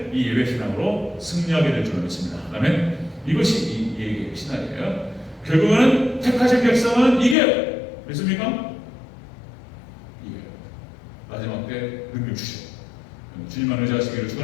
이 예배 신앙으로 승리하게 될 줄 믿습니다. 아멘. 이것이 이 예배의 신앙이에요. 결국은 택하신 백성은 이겨요. 믿습니까? 이겨요. 마지막 때 능력 주시오. 주님만 의지하시기를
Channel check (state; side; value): drops out; right; at 7.4 s